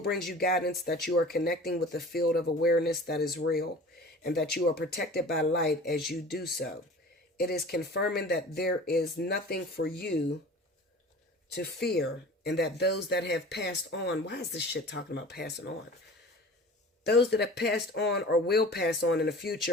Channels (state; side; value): normal; both; correlation 0.41